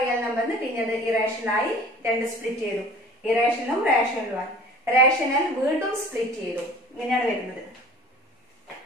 നമ്പറിന് പിന്നെ അത് ഇറേഷണലായി രണ്ട് സ്പ്ലിറ്റ് ചെയ്തു, ഇറേഷണലും റേഷണലുമായി. റേഷണൽ വീണ്ടും സ്പ്ലിറ്റ് ചെയ്തു. ഇങ്ങനെയാണ് വരുന്നത്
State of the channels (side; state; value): both; normal; correlation 0.45